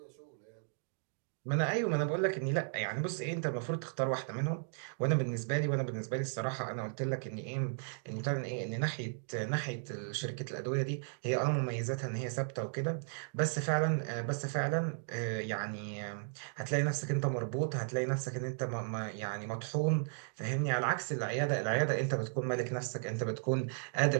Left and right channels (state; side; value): silent; left; digital silence